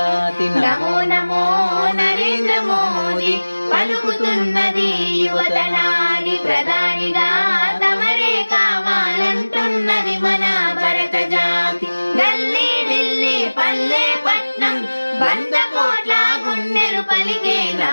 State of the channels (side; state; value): both; inverted; correlation -1.00